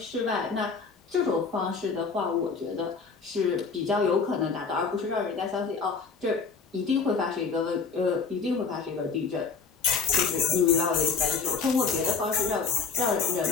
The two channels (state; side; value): quieter; right; 5.1 dB